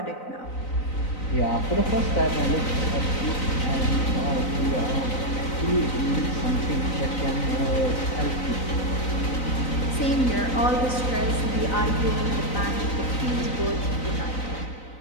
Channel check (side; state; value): right; late; 3.9 ms